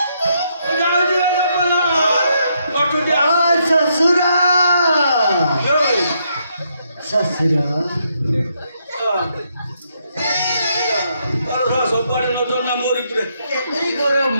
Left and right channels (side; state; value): both; inverted; correlation -0.76